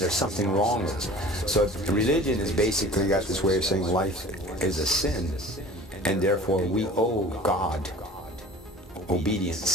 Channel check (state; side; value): normal; both; correlation 0.43